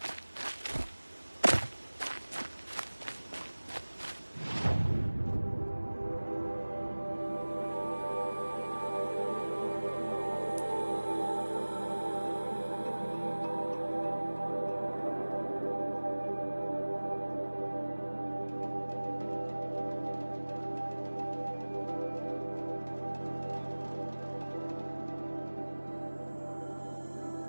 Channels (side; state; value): both; inverted; correlation -1.00